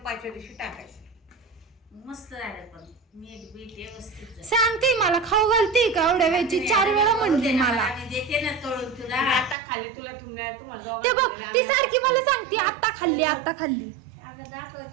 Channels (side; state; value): left; drops out; at 9.6 s